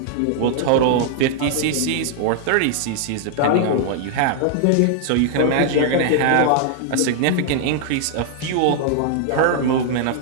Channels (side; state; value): both; different; correlation -0.01